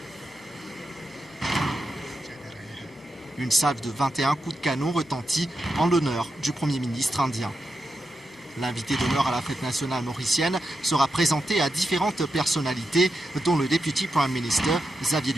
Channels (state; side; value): normal; both; correlation 0.87